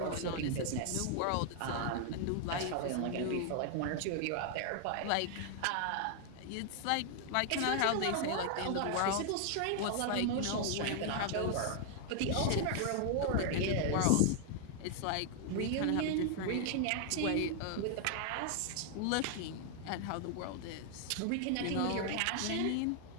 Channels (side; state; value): both; different; correlation 0.00